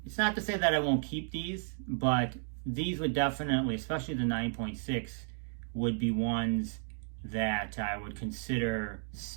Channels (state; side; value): silent; left; digital silence